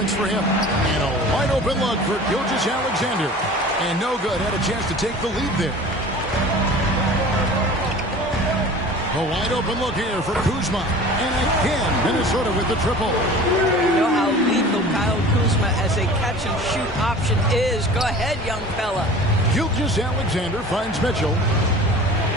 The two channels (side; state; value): both; normal; correlation 0.41